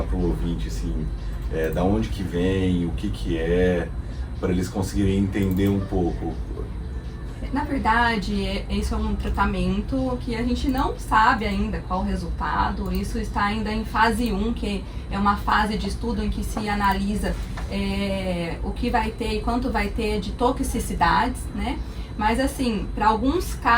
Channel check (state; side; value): identical; both; correlation 1.00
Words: para o ouvinte assim, da onde que vem, o que é, para eles conseguirem entender um pouco. Na verdade, isso é um tratamento que a gente não sabe ainda qual o resultado. Isso está ainda em fase 1, que é uma fase de estudo em que se analisa o que vai ter e quanto vai ter de toxicidades, né? Mas assim, para alguns